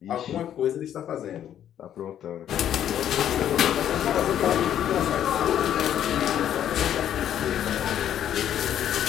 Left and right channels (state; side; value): quieter; right; 10.4 dB